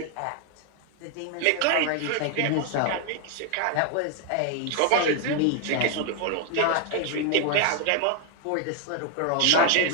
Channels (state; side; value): different; both; correlation 0.01